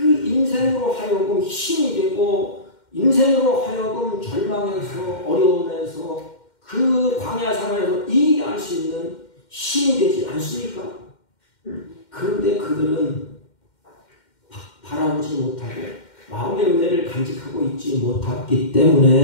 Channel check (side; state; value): right; late; 2.1 ms